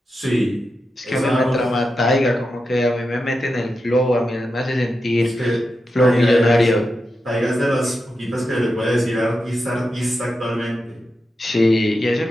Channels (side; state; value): both; normal; correlation 0.89